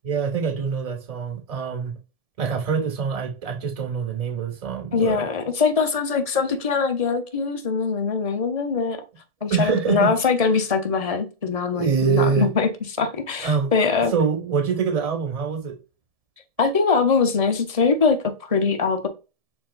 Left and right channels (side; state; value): left; late; 1.7 ms